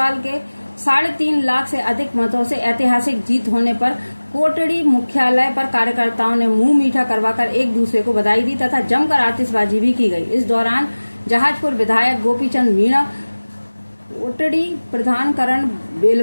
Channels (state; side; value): inverted; both; correlation -1.00